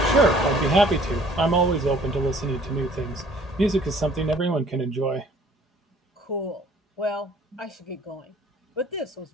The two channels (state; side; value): normal; both; correlation 0.55